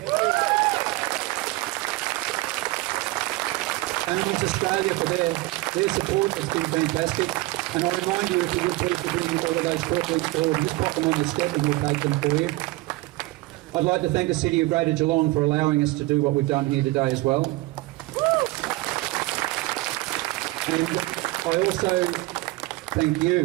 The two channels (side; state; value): left; quieter; 20.3 dB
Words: Animals Australia for their support has been fantastic. And I remind you, if you would please, to bring all of those portraits forward, just pop them on the step and we'll take them for you. I'd like to thank the City of Greater Geelong for allowing us to do what we've done here today as well. And I also thank